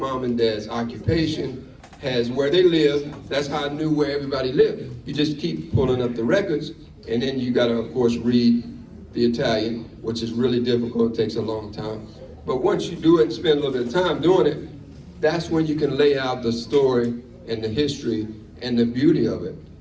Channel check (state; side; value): identical; both; correlation 1.00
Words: and dad's occupation, has where they live. That's how I knew where everybody lived. You just keep pulling up the records, and then you gotta, of course, read the Italian, which is really difficult, it takes a long time. But once you do it and spend a little bit of time doing it, that's when you can lay out the story and the history and the beauty of it.